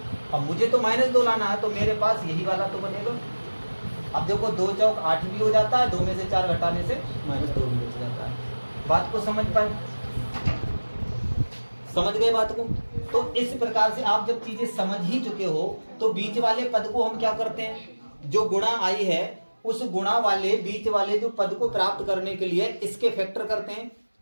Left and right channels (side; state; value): both; inverted; correlation -1.00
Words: अब मुझे तो -2 लाना है, तो मेरे पास यही वाला तो बनेगा। अब देखो 2 चौक 8 भी हो जाता है, 2 में से 4 घटाने से -2 भी बच जाता है। बात को समझ पाए? समझ गए बात को? तो इस प्रकार से आप जब चीजें समझ ही चुके हो तो बीच वाले पद को हम क्या करते हैं? जो गुणा आई है उस गुणा वाले बीच वाले जो पद को प्राप्त करने के लिए इसके फैक्टर करते हैं,